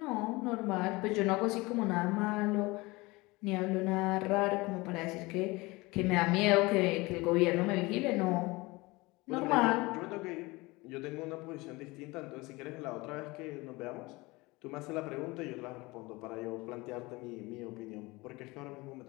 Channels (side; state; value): right; quieter; 22.8 dB